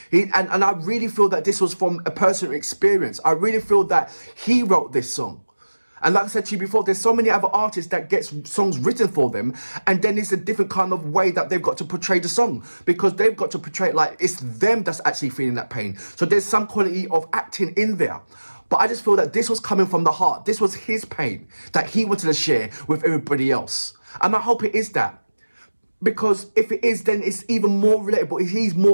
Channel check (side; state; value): both; inverted; correlation -1.00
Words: And I really feel that this was from a personal experience. I really feel that he wrote this song. And like I said to you before, there's so many other artists that get songs written for them, and then it's a different kind of way that they've got to portray the song, because they've got to portray it like it's them that's actually feeling that pain. So there's some quality of acting in there. But I just feel that this was coming from the heart. This was his pain that he wanted to share with everybody else. And I hope it is that. Because if it is, then it's even more relatable. He's